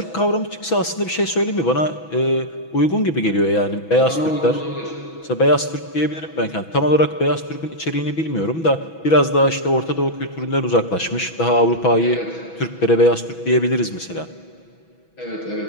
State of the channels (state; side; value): late; right; 6.1 ms